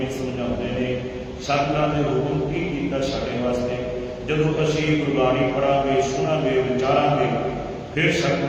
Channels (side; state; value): both; identical; correlation 1.00